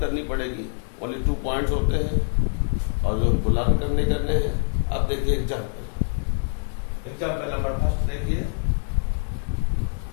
पड़ेगी। ओनली 2 पॉइंट्स होते हैं और जो हमको लागू करने हैं। अब देखिए एग्जाम्पल नंबर फर्स्ट देखिए,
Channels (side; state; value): right; silent; 62 dB below the other